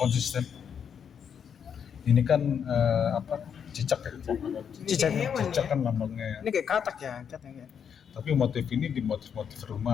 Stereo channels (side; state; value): right; quieter; 7.6 dB